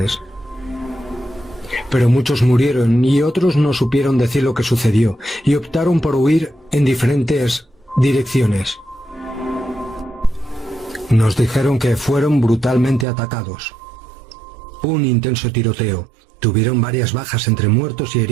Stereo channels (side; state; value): left; drops out; at 13.1 s